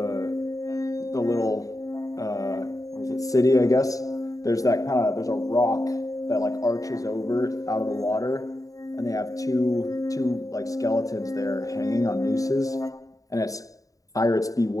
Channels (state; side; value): late; right; 0.16 ms